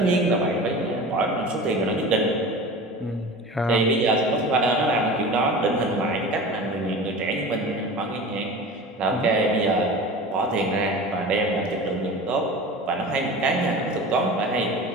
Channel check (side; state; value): both; normal; correlation 0.35